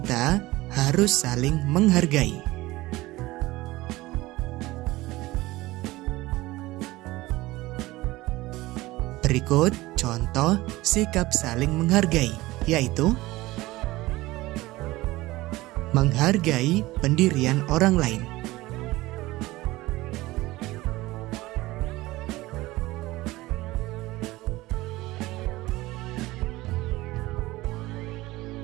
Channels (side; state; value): left; quieter; 19.0 dB